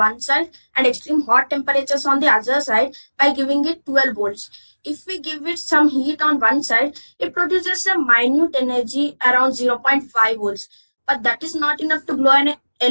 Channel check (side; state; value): both; inverted; correlation -1.00